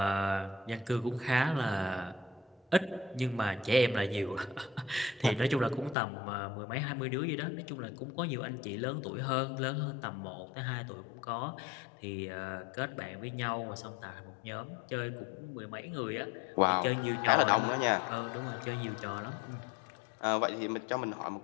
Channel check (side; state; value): right; drops out; at 6.0 s